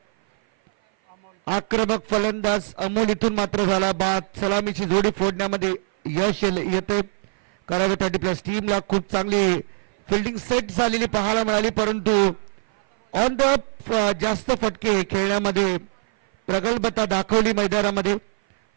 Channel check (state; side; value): silent; left; 56 dB below the other